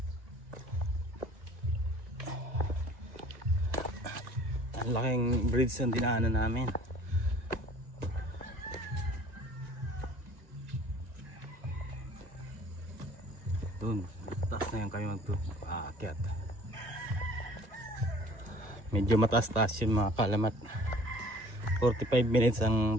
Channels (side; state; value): left; late; 1.6 ms